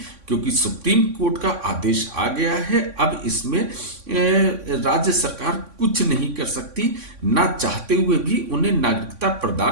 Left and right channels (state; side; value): late; left; 3.5 ms